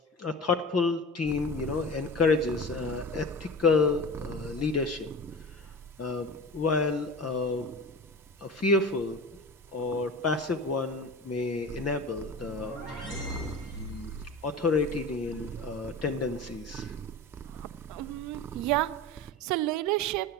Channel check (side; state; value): both; normal; correlation 0.33